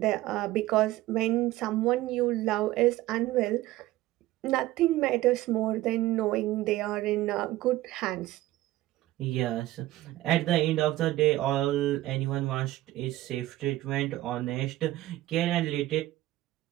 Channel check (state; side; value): quieter; left; 16.3 dB